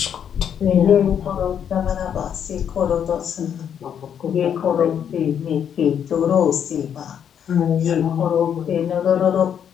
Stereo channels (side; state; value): right; quieter; 8.6 dB